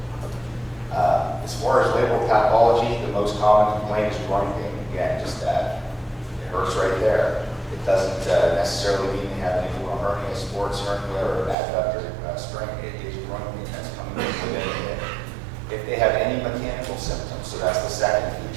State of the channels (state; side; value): drops out; left; at 11.6 s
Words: As far as labral pathology, the most common complaint is groin pain. Again, just that it hurts right there. It doesn't necessarily mean they have any hernia, sports hernia, or adductor strength. It is groin pain that's coming in within the hip. If they have any mechanical symptoms, so that's the second